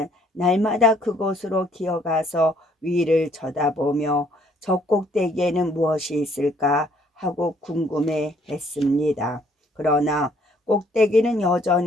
날마다 그곳으로 기어가서 위를 쳐다보며 저 꼭대기에는 무엇이 있을까 하고 궁금해 했습니다. 그러나 꼭대기는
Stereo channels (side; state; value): both; normal; correlation 0.64